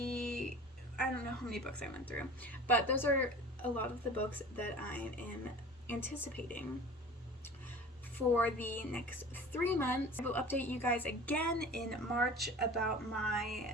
I don't know how many books I went through, but those are a lot of the books that I am anticipating for the next 3 months. I will update you guys again in March about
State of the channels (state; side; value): normal; both; correlation 0.40